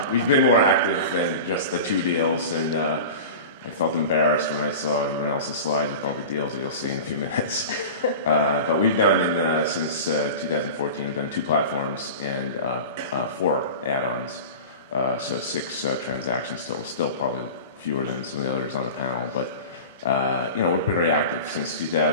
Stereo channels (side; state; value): both; inverted; correlation -0.33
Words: we've been more active than just the 2 deals, and I felt embarrassed when I saw everyone else's slides with all the deals that you'll see in a few minutes. But we've done, since 2014, we've done 2 platforms and 4 add-ons. So 6 transactions total, still probably fewer than some of the others on the panel. But, we're pretty active. Since